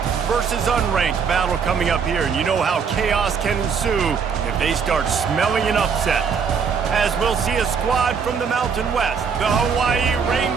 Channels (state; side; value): quieter; left; 6.2 dB